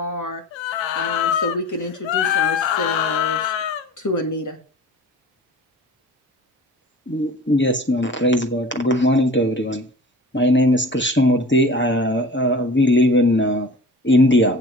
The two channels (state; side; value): normal; both; correlation 0.40